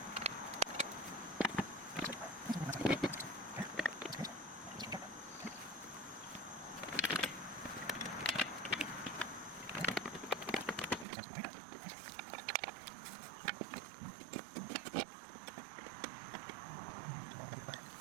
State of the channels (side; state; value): left; drops out; at 11.1 s